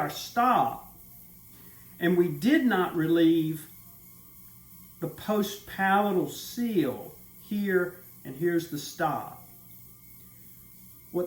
stop. And we did not relieve the post-palatal seal here, and here's the stop.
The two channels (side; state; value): both; identical; correlation 1.00